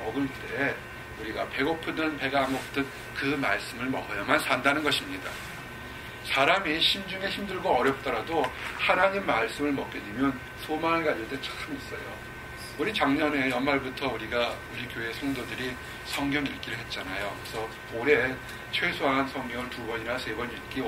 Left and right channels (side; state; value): both; identical; correlation 1.00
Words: 때 우리가 배고프든 배가 안 고프든 그 말씀을 먹어야만 산다는 것입니다. 사람이 심중에 힘들고 어렵더라도 하나님 말씀을 먹게 되면 소망을 가질 때 참 있어요. 우리 작년에 연말부터 우리 교회 성도들이 성경 읽기를 했잖아요. 그래서 올해 최소한 성경을 2번이나 3번 읽기